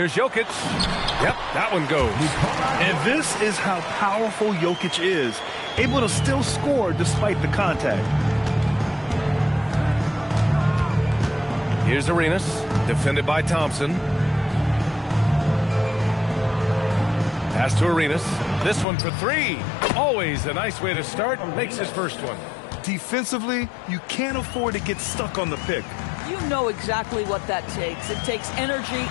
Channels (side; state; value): right; drops out; at 18.9 s